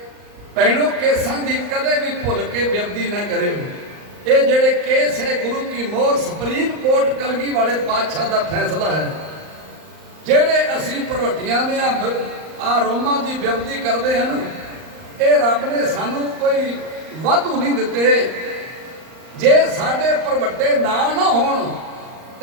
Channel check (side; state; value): left; late; 38 ms